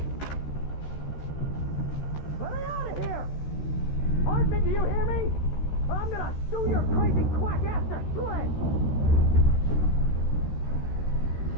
Let me out of here! Hartman, do you hear me? I'm gonna sue your crazy quack-ass to shreds!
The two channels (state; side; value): late; right; 13 ms